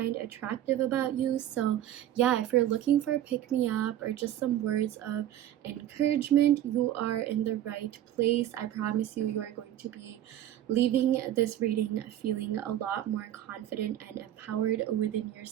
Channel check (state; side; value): quieter; left; 12.0 dB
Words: attractive about you. So yeah, if you're looking for a pick-me-up or just some words of encouragement, you are in the right place. I promise you, you are going to be leaving this reading feeling a lot more confident and empowered within